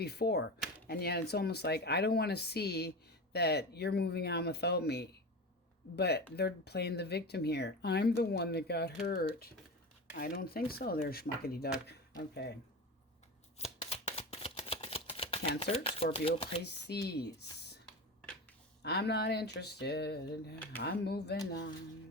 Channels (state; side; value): normal; both; correlation 0.26